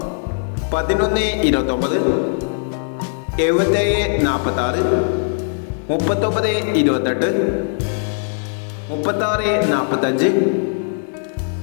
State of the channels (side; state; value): right; silent; digital silence